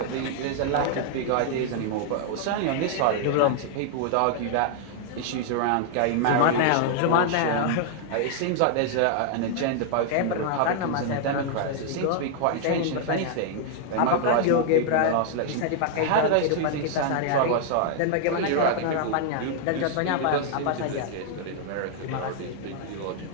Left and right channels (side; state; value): both; different; correlation 0.00